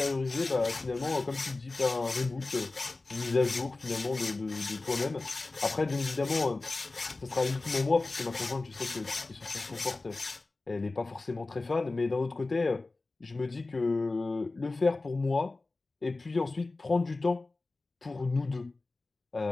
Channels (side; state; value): right; quieter; 3.3 dB